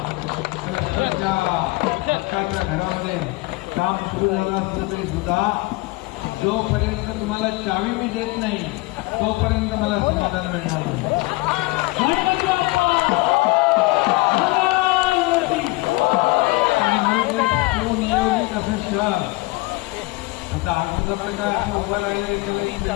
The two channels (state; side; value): quieter; right; 23.0 dB